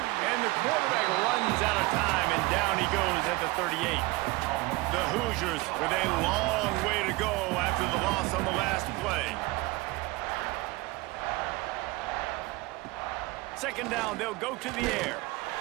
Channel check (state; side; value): quieter; left; 22.1 dB